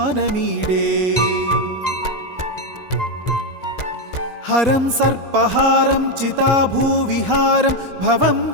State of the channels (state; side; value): late; right; 1.9 ms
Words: हरं सर्पहारं चिताभूविहारं भवं